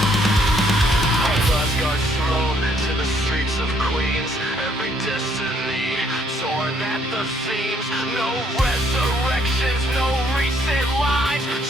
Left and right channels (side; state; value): both; normal; correlation 0.67